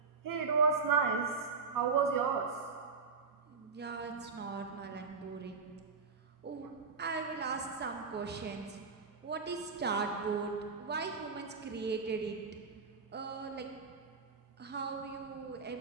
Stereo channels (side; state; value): left; quieter; 4.9 dB